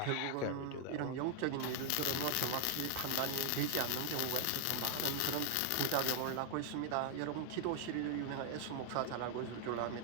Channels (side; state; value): both; different; correlation 0.00